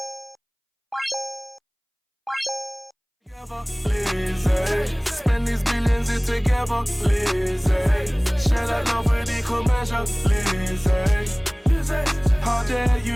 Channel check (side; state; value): both; identical; correlation 1.00